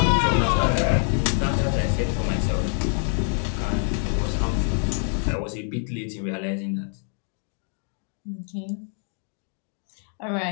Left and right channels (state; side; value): silent; right; 55 dB below the other